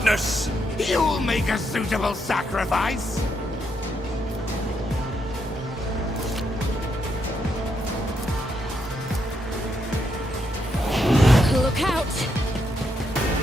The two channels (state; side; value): normal; both; correlation 0.78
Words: You'll make a suitable sacrifice. out!